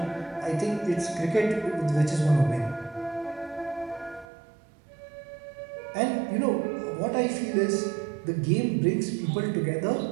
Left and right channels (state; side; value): drops out; left; at 4.2 s